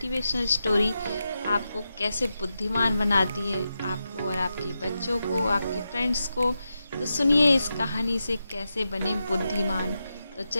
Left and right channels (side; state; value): both; inverted; correlation -0.88